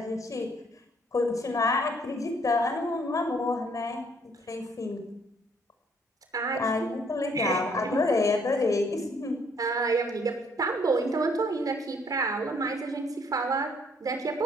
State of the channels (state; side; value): normal; both; correlation 0.64